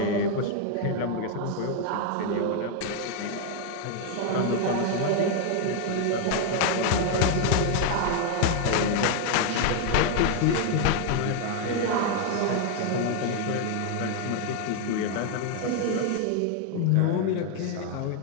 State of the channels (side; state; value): both; different; correlation 0.01